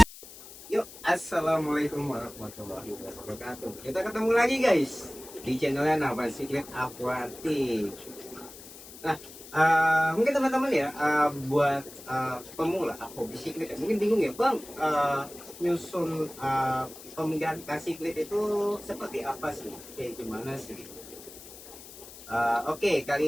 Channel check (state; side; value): noise; left; hiss, 17 dB below the sound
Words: Yuk, assalamualaikum warahmatullahi wabarakatuh. Kita ketemu lagi guys di channelnya Nafas Secret Aquatic. Nah, mungkin teman-teman ya, buat pemula hobi siklit, mungkin bingung ya bang, nyusun pemilihan ikan siklit itu seperti apa sih, kayak gimana sih? Oke,